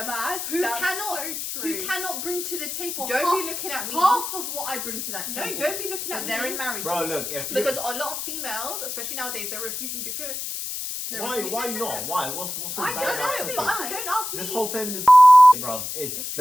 who that's cannot- so true. who cannot bring to the table Don't half, be looking at me. half of what I bring to that No, table. don't be looking But at they're me. in marriages. bro, look, if you Because a lot of females, especially nowadays, they're refusing to cook. They're why refusing to not? cook. Why? What's so I bad don't about know, cooking? but Why? don't ask me. This whole feminist bruv. It's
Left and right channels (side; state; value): left; noise; hiss, 5 dB below the sound